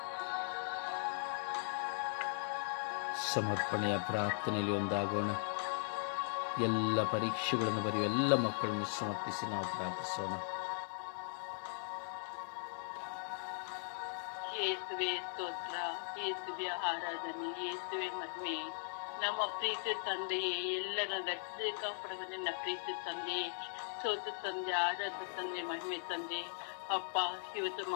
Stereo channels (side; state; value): right; silent; digital silence